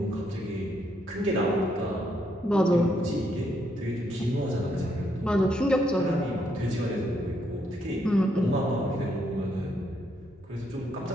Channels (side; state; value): both; normal; correlation 0.75